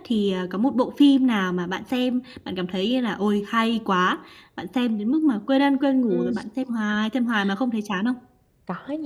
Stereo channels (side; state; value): both; identical; correlation 1.00